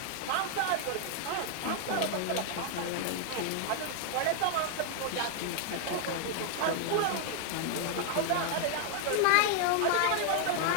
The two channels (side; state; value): both; different; correlation 0.00